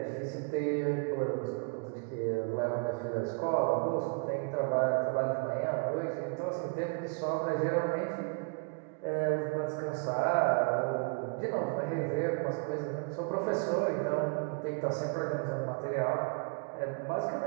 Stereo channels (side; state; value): left; quieter; 39.5 dB